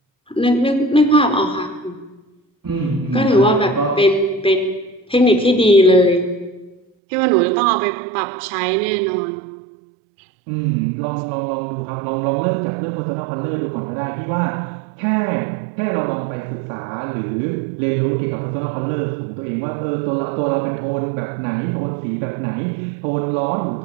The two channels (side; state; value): left; drops out; at 6.8 s